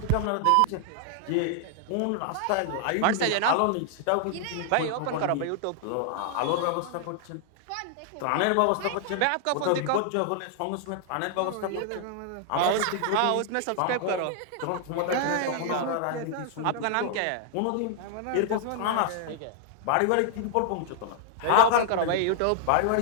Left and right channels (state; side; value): different; both; correlation 0.00